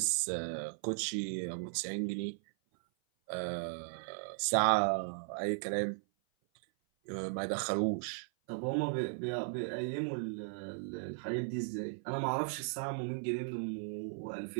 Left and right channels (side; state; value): left; silent; 53 dB below the other